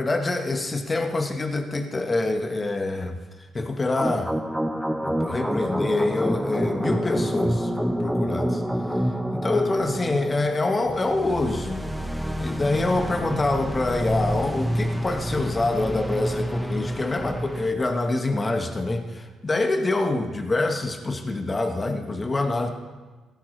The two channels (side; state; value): both; normal; correlation 0.94